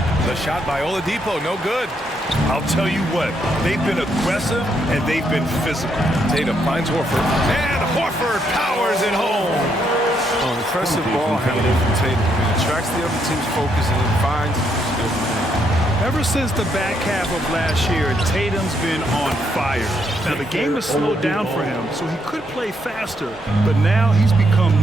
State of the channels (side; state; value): both; normal; correlation 0.75